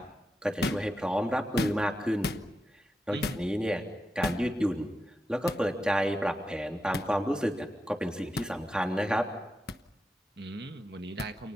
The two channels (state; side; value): normal; both; correlation 0.88